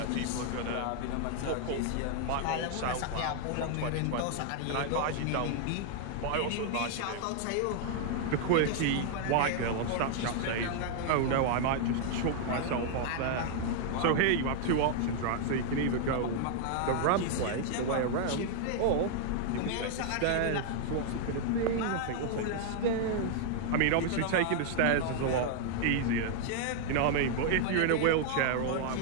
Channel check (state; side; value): different; both; correlation 0.00